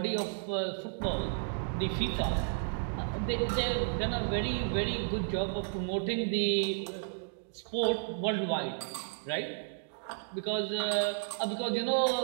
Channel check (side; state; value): left; silent; digital silence